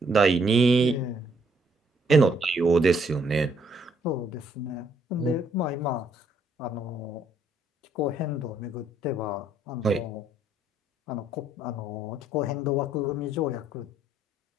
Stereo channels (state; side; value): normal; both; correlation 0.68